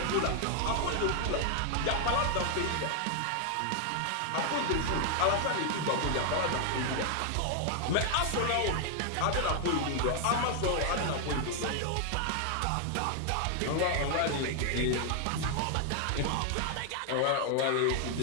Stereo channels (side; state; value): both; different; correlation 0.00